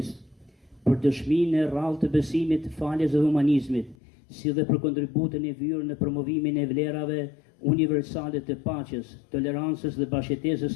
për dëshminë e rrallë të besimit, faljes dhe humanizmit, si dhe për kontributin e vyrë në promovimin e vlerave universale të paqes, tolerancës dhe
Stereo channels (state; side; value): drops out; right; at 4.0 s